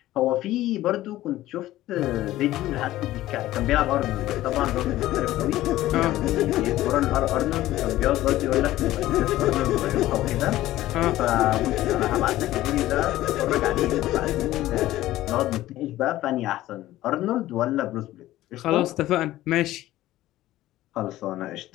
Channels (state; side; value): quieter; right; 15.3 dB